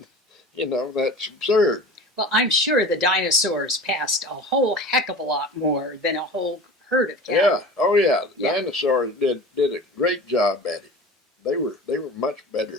mean, that's absurd. Well, I'm sure the dinosaurs passed a whole heck of a lot more than a whole herd of cattle. Yeah, oh yeah, the dinosaurs did a great job at it. They were much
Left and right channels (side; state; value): both; normal; correlation 0.37